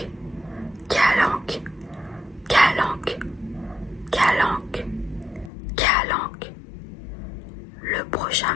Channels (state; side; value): drops out; right; at 5.5 s